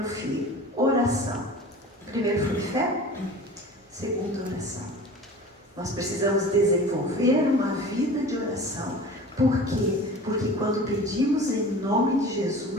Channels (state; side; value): normal; both; correlation 0.39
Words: Filho. Oração. Primeiro foi fé, segundo oração. Nós precisamos desenvolver uma vida de oração. Por quê? Porque quando pedimos em nome de